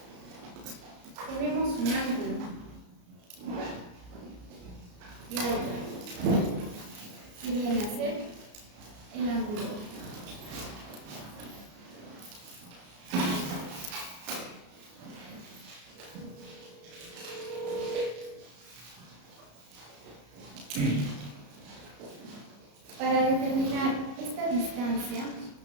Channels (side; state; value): left; late; 33 ms